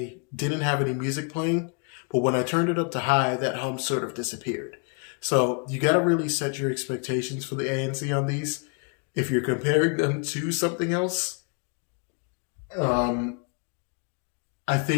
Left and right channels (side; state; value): right; quieter; 38.6 dB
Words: didn't have any music playing, But when I turned it up to high, that hum sort of disappeared. So you got to really set your expectations for the ANC on these. If you're comparing them to something else, um, I